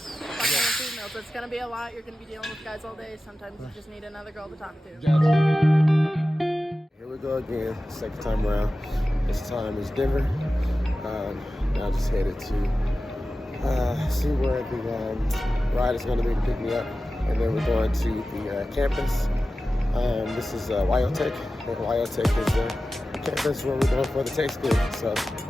Find other females. It's going to be a lot. You're going to be dealing with guys all day. Sometimes you just need another girl to talk to. Here we go again, second time around. This time is Denver. Now just headed to see where the ride is going to be to pick me up. And then we're going to the campus. This is Wyotech. And Wyotech is the campus where we're going for the tech school. So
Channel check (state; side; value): normal; both; correlation 0.95